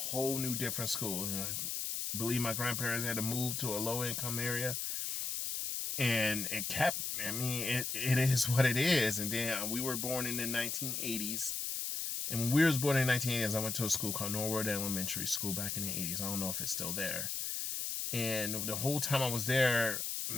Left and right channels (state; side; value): noise; left; hiss, 2 dB below the sound